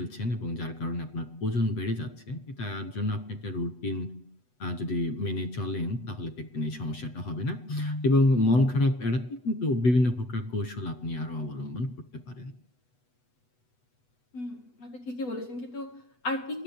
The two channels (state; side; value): late; right; 8.1 ms